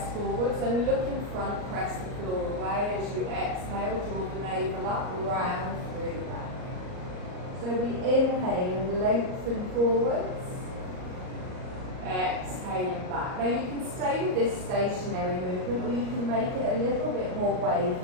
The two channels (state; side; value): late; left; 38 ms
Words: forwards and look in front, press the floor away. As you exhale, draw the navel up, round through the back. So we inhale and lengthen forwards. Exhaling back. Now you can stay with this stationary movement or you can make it a little bit more